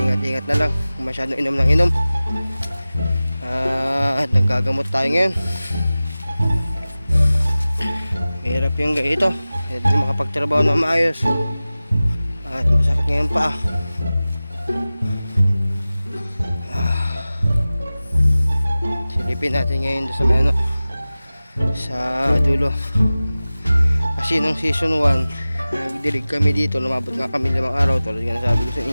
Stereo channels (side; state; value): both; inverted; correlation -0.97